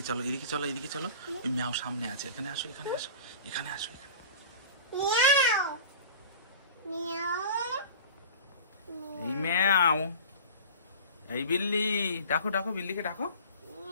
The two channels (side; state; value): both; inverted; correlation -0.38